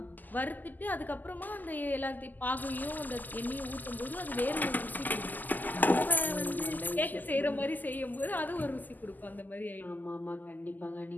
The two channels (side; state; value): right; late; 0.084 ms